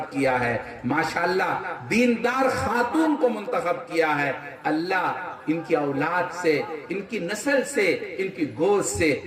کیا ہے، ماشاءاللہ دیندار خاتون کو منتخب کیا ہے. اللہ ان کی اولاد سے، ان کی نسل سے، ان کی گوشت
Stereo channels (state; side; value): identical; both; correlation 1.00